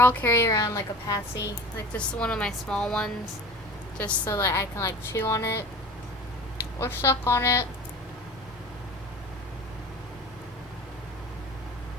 carry around, like, a Passy, like just one of my small ones, just so that I can, like, chew on it or suck on it.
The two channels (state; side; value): normal; both; correlation 0.38